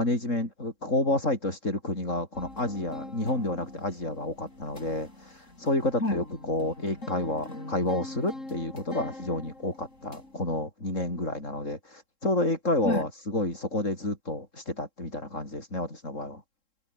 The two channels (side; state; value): right; late; 3.7 ms